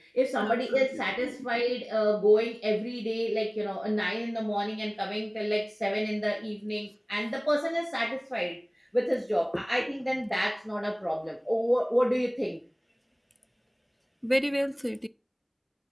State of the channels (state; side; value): identical; both; correlation 1.00